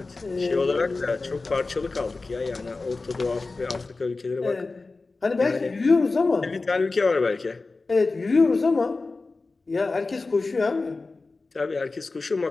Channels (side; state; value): right; quieter; 3.7 dB